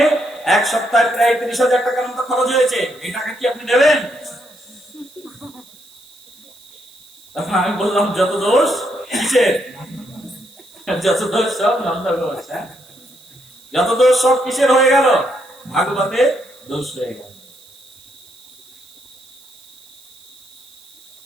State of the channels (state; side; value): noise; right; hiss, 25 dB below the sound